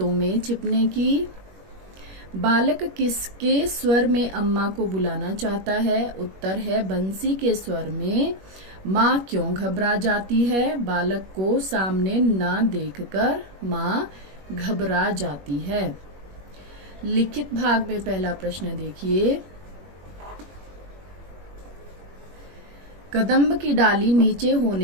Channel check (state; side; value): late; left; 21 ms